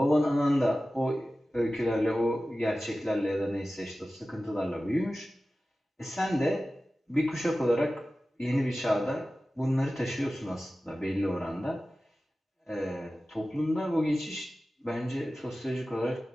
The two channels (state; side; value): normal; both; correlation 0.95